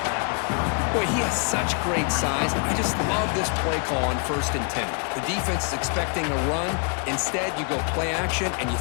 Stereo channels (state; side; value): quieter; right; 38.7 dB